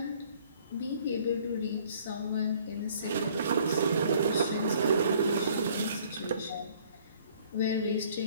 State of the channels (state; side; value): inverted; both; correlation -0.58